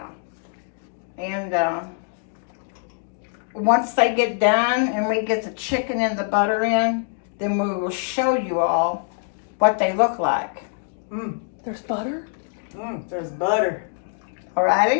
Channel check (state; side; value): silent; right; 62 dB below the other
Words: And once they get done and we get the chicken and the butter in, then we will show you all what they look like. There's butter? There's butter.